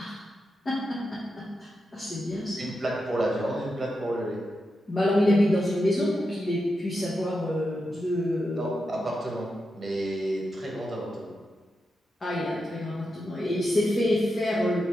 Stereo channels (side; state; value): both; normal; correlation 0.88